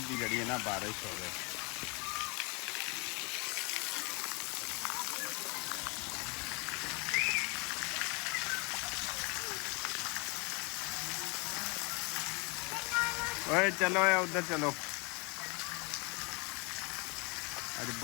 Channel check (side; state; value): right; quieter; 30.6 dB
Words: की जी ना बारिश हो। ओए चलो उधर चलो। अज